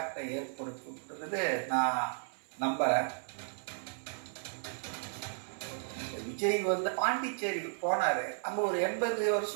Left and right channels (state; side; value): silent; left; 55 dB below the other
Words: ஏற்படுத்தும்ன்றது நான் நம்புறேன். விஜய் வந்து பாண்டிச்சேரிக்கு போனாரு. அங்க ஒரு 80